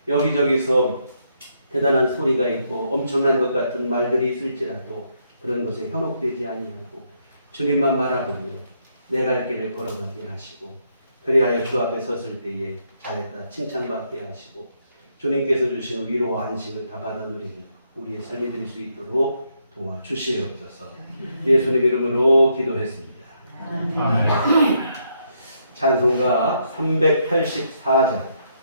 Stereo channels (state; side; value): inverted; both; correlation -0.76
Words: 여기저기서 대단한 소리가 있고 엄청난 것 같은 말들이 있을지라도 그런 것에 현혹되지 아니하고 주님만 바라보며 내 갈 길을 걸어가게 하시고 그리하여 주 앞에 섰을 때에 잘했다 칭찬받게 하시고 주님께서 주신 위로와 안식을 다 받아 누리는 우리의 삶이 될 수 있도록 도와주시옵소서. 예수님 이름으로 기도했습니다. 찬송가 384장